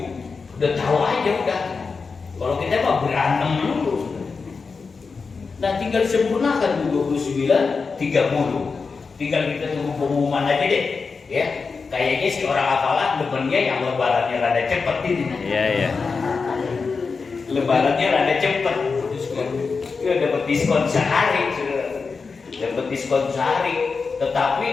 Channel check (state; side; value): quieter; right; 4.8 dB